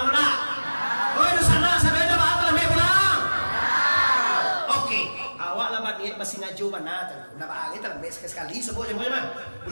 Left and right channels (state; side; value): inverted; both; correlation -1.00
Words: ndak. Oh itu sana sampai ndak bahasa lambe pulang. Oke, awak lambat ni masih ngaju mana? Ndak bahasa kita lambe sekali sebut jempol mah.